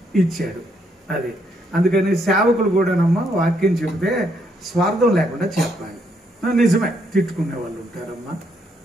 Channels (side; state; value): both; normal; correlation 0.74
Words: ఇచ్చాడు. అది అందుకని సేవకులు కూడానమ్మా వాక్యం చెబితే స్వార్థం లేకుండా చెప్పాలి. నిజమే, తిట్టుకునే వాళ్ళు ఉంటారమ్మా,